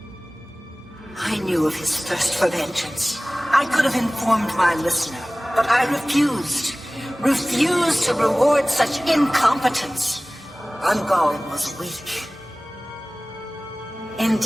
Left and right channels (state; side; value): normal; both; correlation 0.98